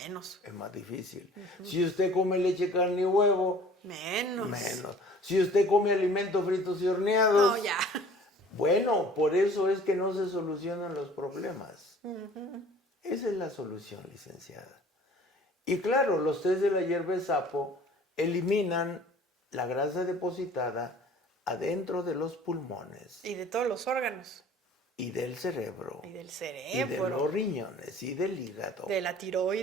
es más difícil. Si usted come leche, carne y huevo, Menos. menos. Si usted come alimentos fritos y horneados, No, ya. bueno, por eso es que no se solucionan los problemas. Esa es la solución, licenciada. Y claro, los test de la hierba de sapo eliminan la grasa depositada adentro de los pulmones Y de todos los órganos. y del cerebro. Y del Y de cerebro. los riñones y del hígado. De la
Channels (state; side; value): normal; both; correlation 0.49